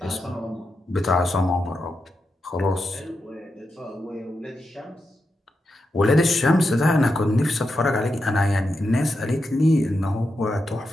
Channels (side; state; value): both; normal; correlation 0.87